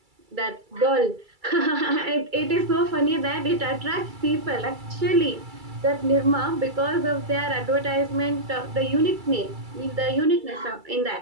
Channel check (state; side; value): late; left; 2.3 ms